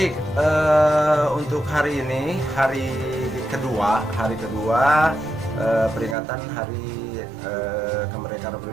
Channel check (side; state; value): left; drops out; at 6.2 s